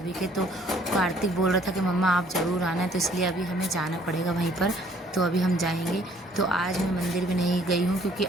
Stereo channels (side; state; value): both; normal; correlation 0.60